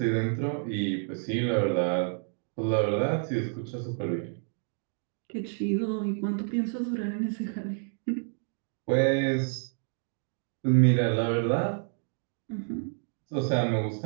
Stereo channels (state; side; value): silent; left; 58 dB below the other